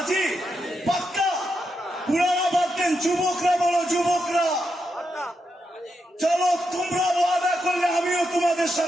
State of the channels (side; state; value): both; normal; correlation 0.84